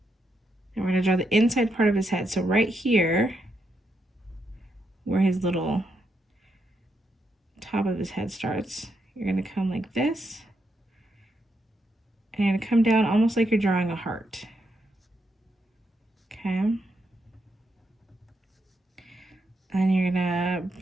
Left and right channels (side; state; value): both; normal; correlation 0.81